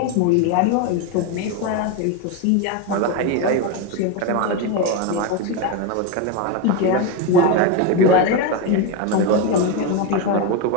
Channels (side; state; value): both; different; correlation 0.04